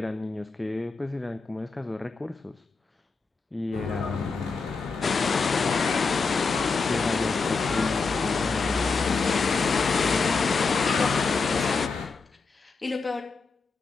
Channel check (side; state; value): right; quieter; 4.5 dB